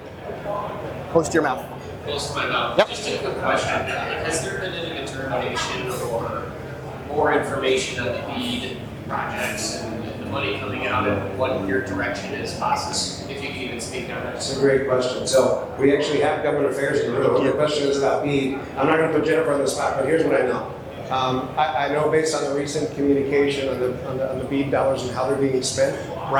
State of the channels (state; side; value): identical; both; correlation 1.00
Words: Close to your mouth. Close to my mouth. Yep. Just a quick question. Has there been any determination or more information on the BEAD projects and the money coming out and what your direction is, bosses? If you can even speak on that. That's a great question. So we actually have government affairs in the room. The question is about BEAD. I'm not going to put Jennifer on the spot, but here's what I know. I know based on the recent communication on the BEAD dollars and how they're being spent,